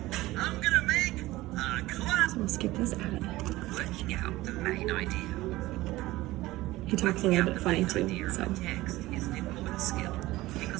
So we'll skip this ad. Working out the main idea. He talks a little bit funny too, so. Text is an important skill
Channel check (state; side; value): quieter; left; 18.1 dB